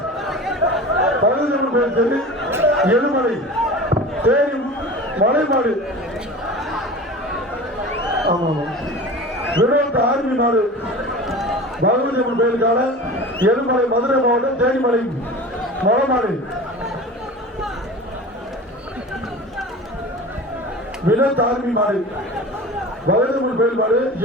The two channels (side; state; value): both; normal; correlation 0.35